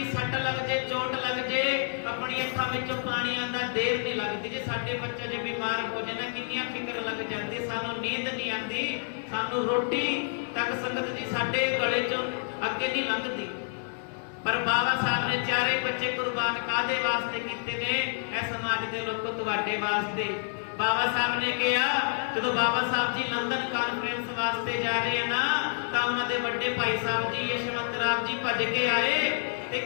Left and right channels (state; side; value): silent; right; 59 dB below the other